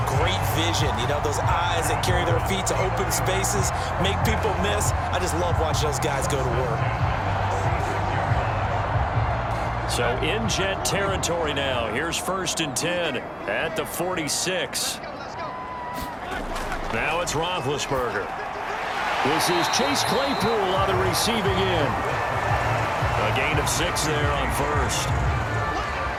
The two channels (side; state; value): both; identical; correlation 1.00